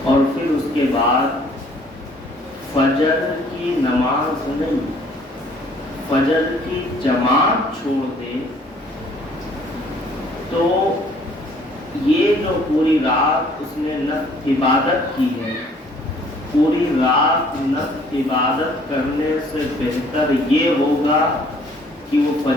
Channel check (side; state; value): both; normal; correlation 0.59